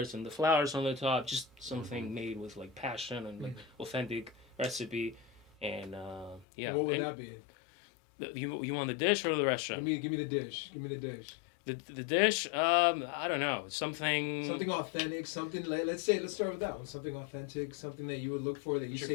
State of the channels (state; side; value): drops out; right; at 6.5 s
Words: and the flowers on the top. Just something made with like passion and like authentic recipe. And yeah. And what would And that be? you want the dish or the restaurant? Give me the dish. Give me the dish. The dish, I don't know, something Something authentic. Something. Let's start with that one. Something authentic. Something that you would look for. That you What's your say